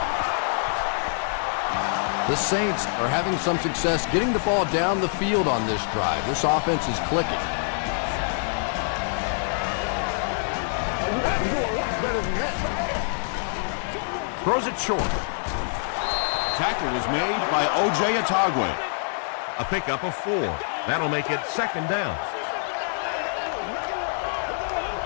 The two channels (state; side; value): silent; right; digital silence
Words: The Saints are having some success getting the ball down the field on this drive. This offense is clicking. Throws it short. Tackle was made by O.J. Atagwe. A pickup of 4. That'll make it 2nd down.